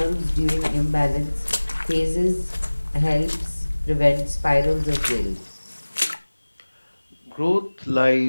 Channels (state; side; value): inverted; both; correlation -1.00